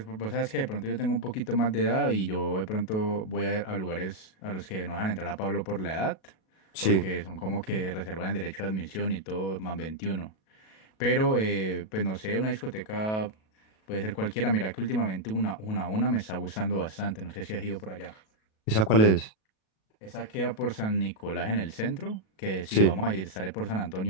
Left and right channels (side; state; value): right; late; 37 ms